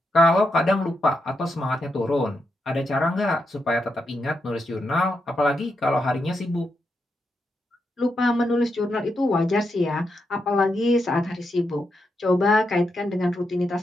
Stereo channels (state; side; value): normal; both; correlation 0.84